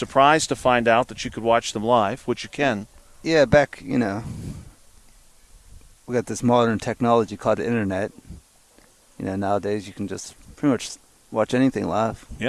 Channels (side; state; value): both; identical; correlation 1.00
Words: to find out that you could watch them live, which you can. Yeah, back, we got this modern technology called the internet. Nowadays you can just pretty much watch anything live.